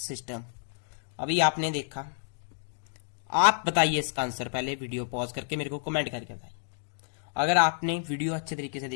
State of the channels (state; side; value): silent; right; digital silence